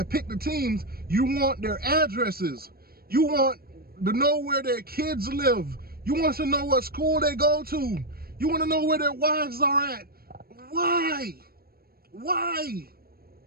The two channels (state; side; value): late; left; 0.44 ms